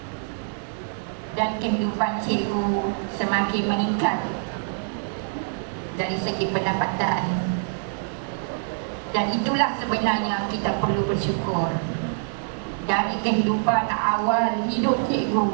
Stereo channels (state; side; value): silent; left; 62 dB below the other